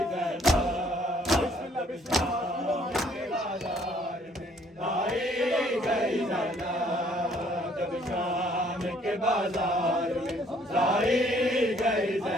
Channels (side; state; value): both; normal; correlation 0.62